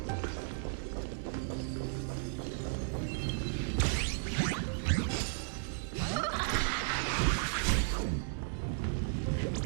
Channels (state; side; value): silent; left; 55 dB below the other